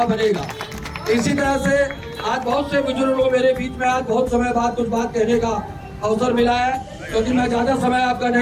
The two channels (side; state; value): both; identical; correlation 1.00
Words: बनेगा। इसी तरह से आज बहुत से बुजुर्ग लोग मेरे बीच में आज बहुत समय बाद कुछ बात कहने का अवसर मिला है, क्योंकि मैं ज्यादा समय आपका